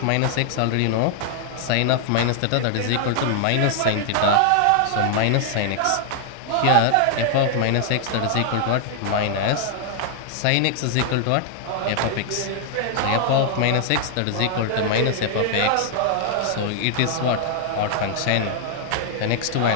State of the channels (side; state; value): both; different; correlation 0.00